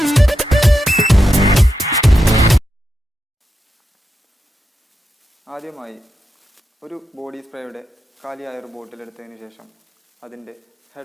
ആദ്യമായി ഒരു ബോഡി സ്പ്രേയുടെ കാലിയായ ഒരു ബോട്ടിൽ എടുത്തതിന് ശേഷം അതിൻ്റെ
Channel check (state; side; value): normal; both; correlation 0.87